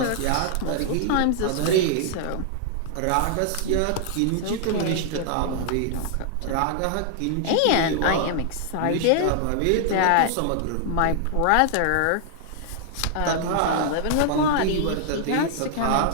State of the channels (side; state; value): both; different; correlation -0.01